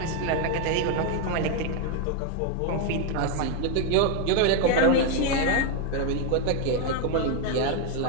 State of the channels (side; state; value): both; different; correlation 0.01